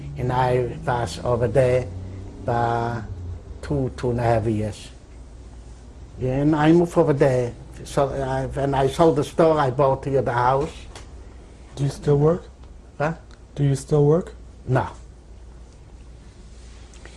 and I was over there for 2.5 years. Yeah, and I moved over there. So when I sold the store, I bought here the house. Do you still work? Huh? Do you still work? No.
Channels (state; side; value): identical; both; correlation 1.00